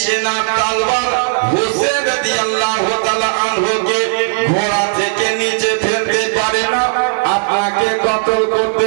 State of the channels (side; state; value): left; silent; digital silence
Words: সেনা তলোয়ার হোসেন রাদিয়াল্লাহু তাআলা আনহুকে ঘোড়া থেকে নিচে ফেলতে পারে না, আপনাকে কতল করতে